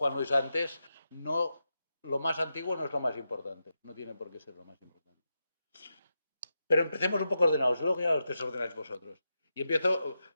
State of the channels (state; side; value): inverted; both; correlation -0.87